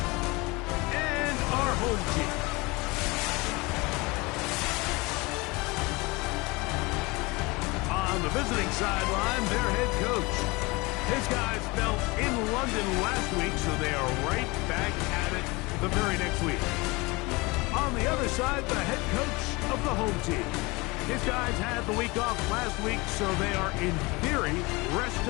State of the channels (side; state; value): right; quieter; 24.6 dB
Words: and our home team. On the visiting sideline, their head coach. His guys fell in London last week, so they are right back at it the very next week. On the other side, the head coach of the home team. His guys had the week off last week, so they are, in theory,